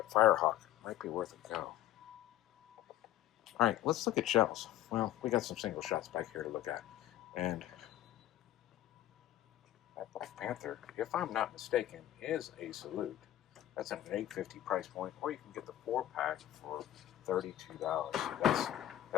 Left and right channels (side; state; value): right; quieter; 13.2 dB